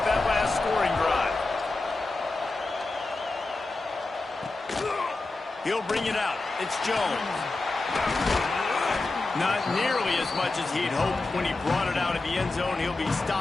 that last scoring drive. He'll bring it out. It's Jones. Not nearly as much as he'd hoped when he brought it out of the end zone. He'll be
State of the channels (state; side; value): quieter; right; 3.3 dB